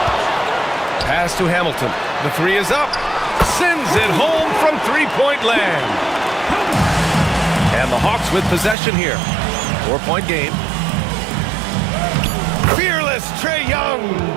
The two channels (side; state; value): left; drops out; at 8.8 s